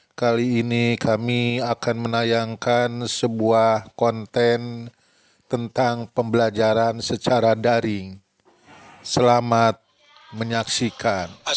Kali ini kami akan menayangkan sebuah konten tentang pembelajaran secara daring. Selamat menyaksikan.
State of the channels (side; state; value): both; identical; correlation 1.00